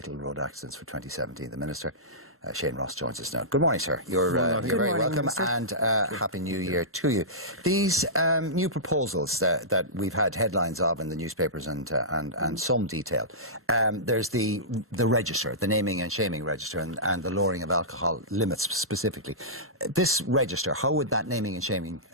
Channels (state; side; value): normal; both; correlation -0.18